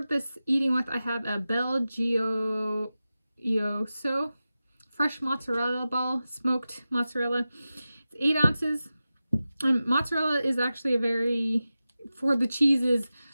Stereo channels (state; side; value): inverted; both; correlation -0.94